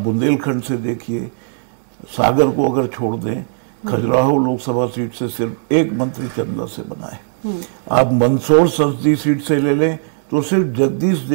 से देखिए, सागर को अगर छोड़ दें, खजुराहो लोकसभा सीट से सिर्फ एक मंत्री चंदा से बना है। आप मंदसौर संसदीय सीट से ले लें तो सिर्फ जगदीश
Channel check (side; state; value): left; silent; digital silence